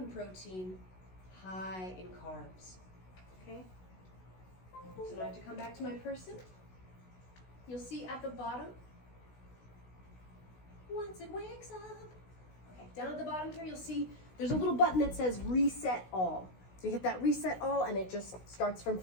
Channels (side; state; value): right; late; 16 ms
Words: protein, high in carbs, okay? So now I have to come back to my person. You'll see at the bottom, once it wakes up. Okay, down at the bottom here, you'll see there's a little button that says reset all. So you hit that reset all and it just starts from